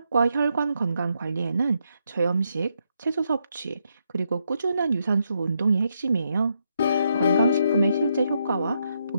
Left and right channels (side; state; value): both; inverted; correlation -0.79